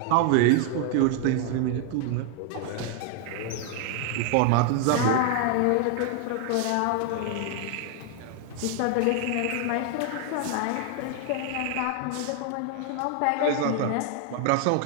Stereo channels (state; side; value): different; both; correlation 0.00